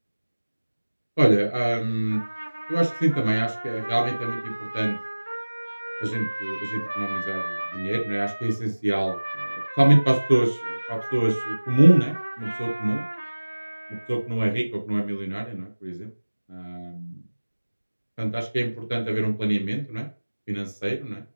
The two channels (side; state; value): both; inverted; correlation -1.00